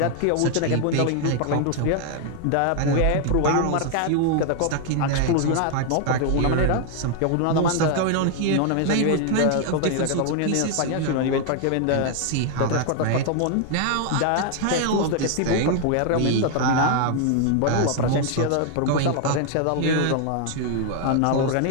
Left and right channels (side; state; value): both; different; correlation 0.00